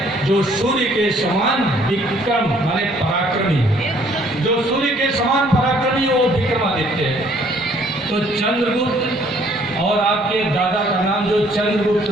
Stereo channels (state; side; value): normal; both; correlation 0.61